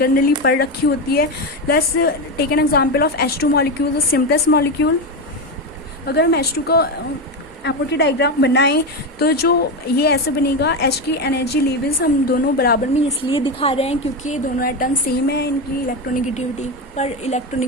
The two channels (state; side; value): normal; both; correlation 0.14